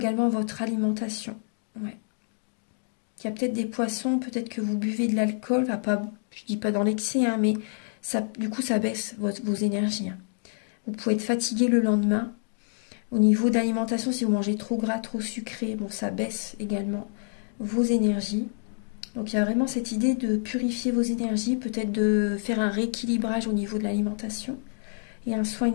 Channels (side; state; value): right; silent; digital silence